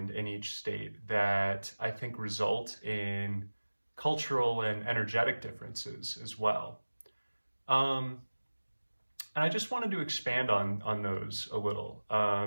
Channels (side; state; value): both; inverted; correlation -1.00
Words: in each state that I think result in cultural and energetic differences as well. Um, and I just wanted to expand on those a little